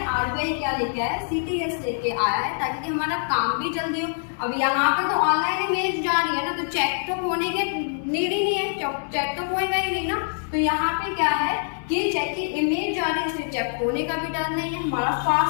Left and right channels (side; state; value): right; silent; digital silence